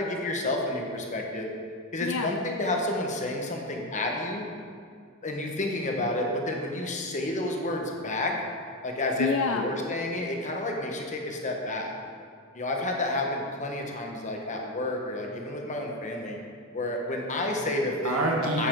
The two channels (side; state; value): both; normal; correlation 0.11